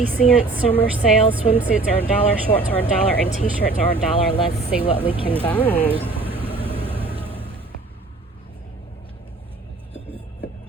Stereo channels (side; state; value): left; quieter; 3.4 dB